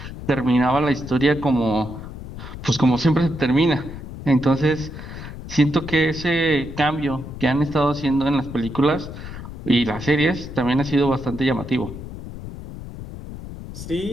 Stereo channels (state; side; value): noise; left; rumble, 11 dB below the sound